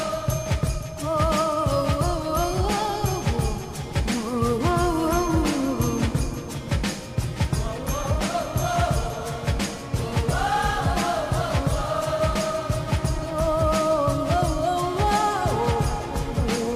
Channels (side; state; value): both; identical; correlation 1.00